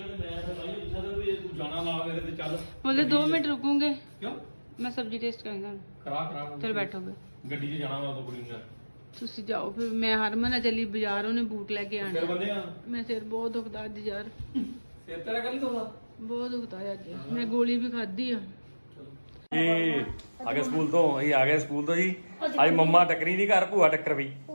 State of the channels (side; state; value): both; inverted; correlation -1.00